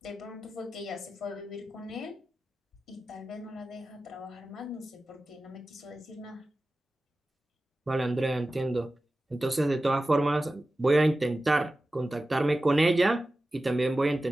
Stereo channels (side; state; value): both; normal; correlation 0.95